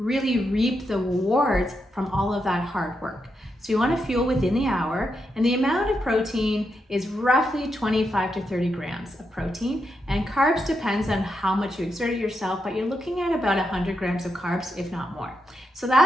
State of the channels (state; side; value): normal; both; correlation 0.84